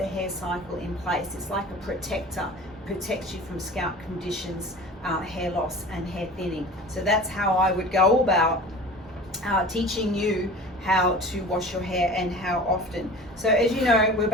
hair cycle in place. It's like a protector, protects you from scalp conditions, hair loss and hair thinning. So that's how I would go about teaching you how to wash your hair and how often. So as you know, we're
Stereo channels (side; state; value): both; normal; correlation 0.39